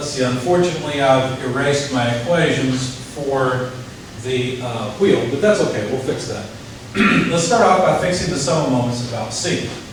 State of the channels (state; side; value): identical; both; correlation 1.00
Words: see, unfortunately I've erased my equations for the wheel, but that's okay, we'll fix that. Let's start off by fixing the sum of moments about C.